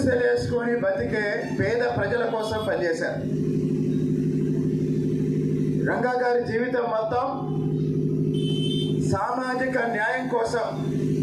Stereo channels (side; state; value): both; identical; correlation 1.00